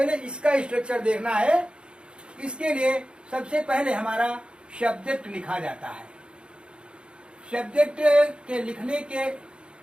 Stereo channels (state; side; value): late; left; 0.054 ms